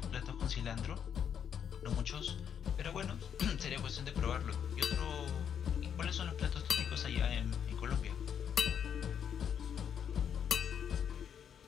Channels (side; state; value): right; quieter; 8.3 dB